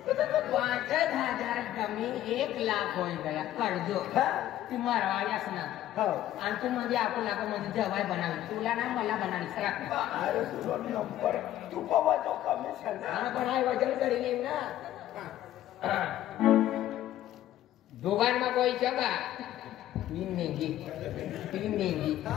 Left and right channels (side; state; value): right; quieter; 13.0 dB